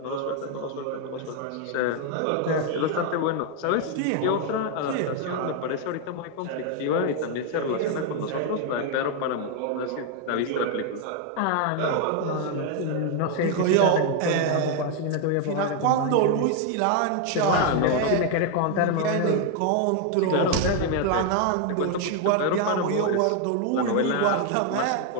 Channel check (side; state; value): both; different; correlation 0.01